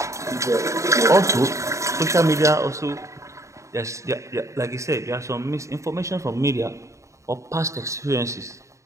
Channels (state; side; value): late; left; 0.15 ms